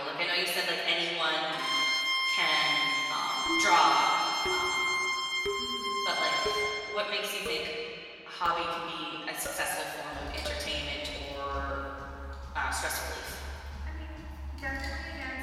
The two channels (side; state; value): both; identical; correlation 1.00